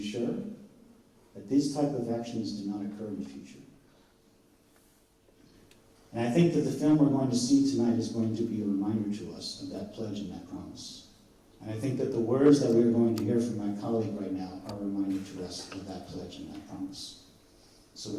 that these type of actions do not occur in the future. And I think that the film we're going to see tonight is going to be a reminder to us of that pledge and that promise. And I think that the words that we're going to hear from my colleague right now are a reminder to us of that pledge and that promise. So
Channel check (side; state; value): both; identical; correlation 1.00